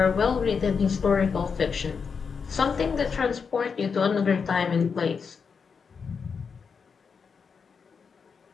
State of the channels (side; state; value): right; quieter; 5.8 dB